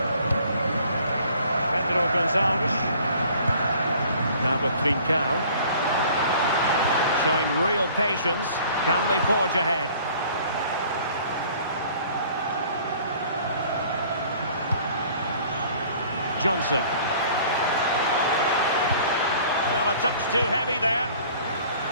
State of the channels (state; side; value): inverted; both; correlation -0.52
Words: Pedro Gonzalez. Now with Trincao. Showing real patience. Can they forge ahead? Johnson. Well, a touch too heavy there.